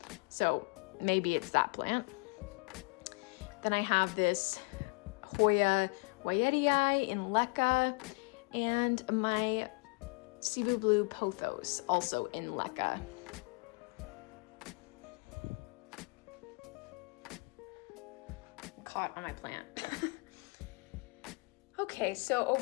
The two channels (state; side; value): quieter; right; 31.3 dB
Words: So maybe it's that plant. Then I have this Hoya Wyetii in Leca and my Cebu Blue Pothos also in Leca. Caught on my plant. Okay, so